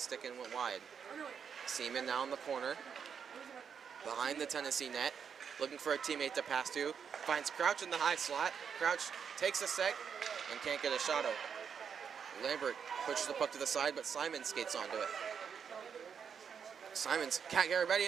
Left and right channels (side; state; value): left; quieter; 7.0 dB